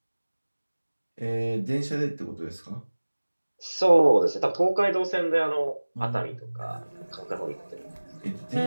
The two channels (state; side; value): inverted; both; correlation -1.00